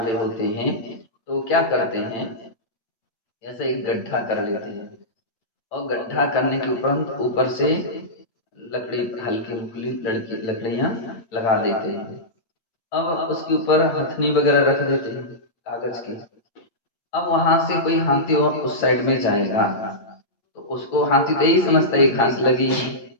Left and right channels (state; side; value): late; right; 8.9 ms